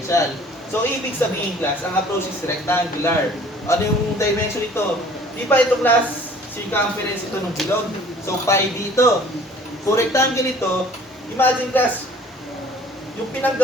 So, ibig sabihin, class, ang approach is rectangular. Ano yung dimension nito? Di ba ito, class, circumference ito ng bilog? So, pi dito. Kung rectangle ito, imagine, class, yung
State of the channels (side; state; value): both; normal; correlation 0.52